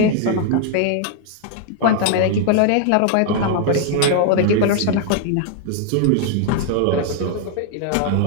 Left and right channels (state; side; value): different; both; correlation 0.00